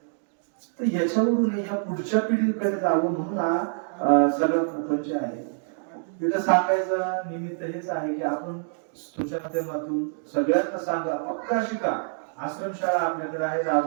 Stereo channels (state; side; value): silent; left; digital silence